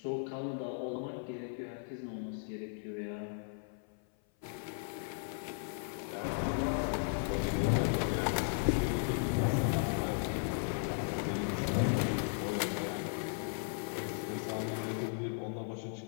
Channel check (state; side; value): silent; right; 54 dB below the other